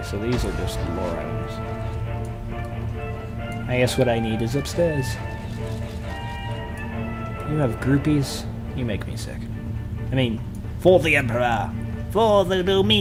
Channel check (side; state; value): both; identical; correlation 1.00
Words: so these are just lore items. I guess what I need is upstairs. You have groupies? You make me sick. I mean, for the Emperor! For the